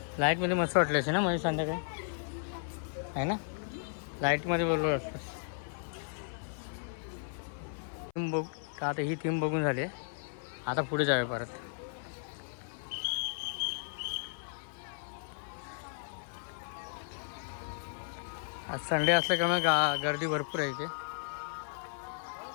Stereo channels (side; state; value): right; silent; 55 dB below the other